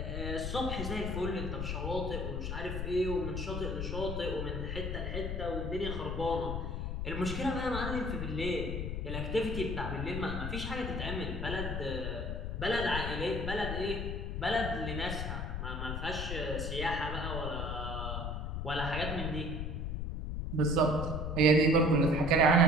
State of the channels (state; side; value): noise; left; rumble, 3 dB below the sound